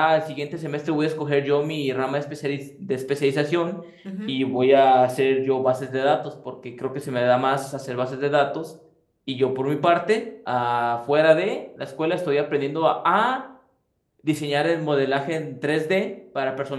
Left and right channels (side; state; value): both; identical; correlation 1.00